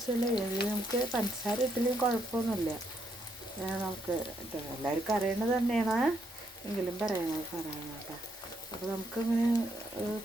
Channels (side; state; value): both; normal; correlation 0.75